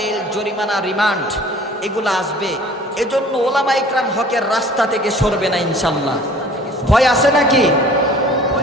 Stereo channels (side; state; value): both; normal; correlation 0.49